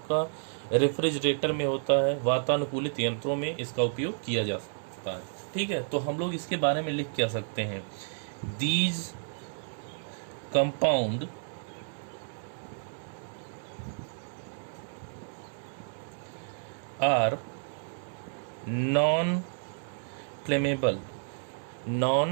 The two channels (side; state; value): left; silent; 57 dB below the other